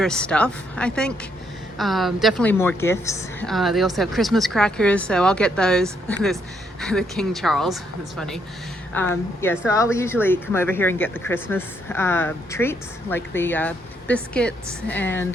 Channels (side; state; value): both; normal; correlation 0.74